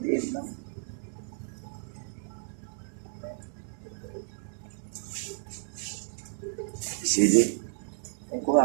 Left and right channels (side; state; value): left; silent; 57 dB below the other